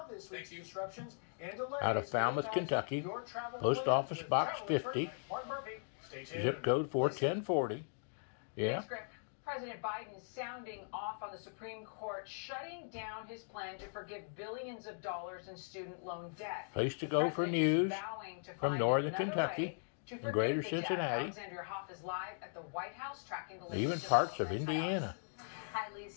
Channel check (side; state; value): right; silent; digital silence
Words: this week's disruptions and delays out of Falmouth, Kentucky, Post Office Box 50, zip code 41040. Yeah. President Biden sounding off on the Supreme Court, shutting down his plan to forgive billions of dollars in student loan debt. Place to go for news from Northern Kentucky and Greater Cincinnati, Alexandria Hoff is live at the White House, tracking the even parts of Indiana.